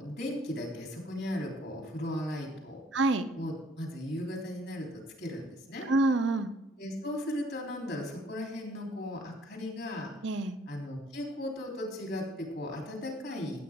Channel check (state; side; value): normal; both; correlation 0.60